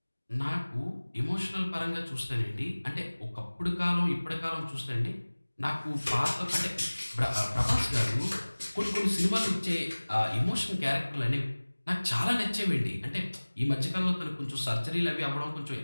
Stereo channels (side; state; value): both; inverted; correlation -1.00